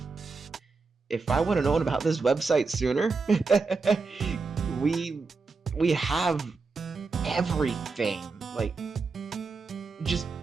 if I would have known about this website sooner, we have everything. Like, just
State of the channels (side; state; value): left; quieter; 4.3 dB